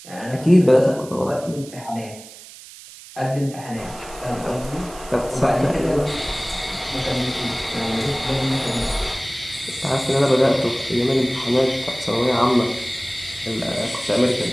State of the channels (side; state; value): right; noise; hiss, 18 dB below the sound